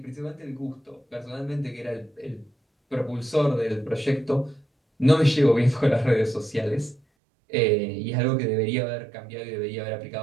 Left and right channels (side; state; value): left; drops out; at 7.0 s